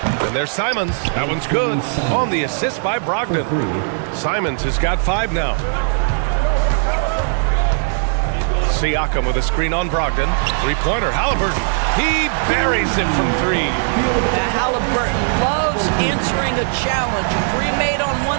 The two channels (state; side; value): silent; left; digital silence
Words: And there's Simons. That one's good. On the assist by Brogdon. Simons has got 5 now. Siakam with a screen on Brogdon. Three-pointer, Halliburton. He buries it from 3. Halliburton loves answering a challenge. 3 made on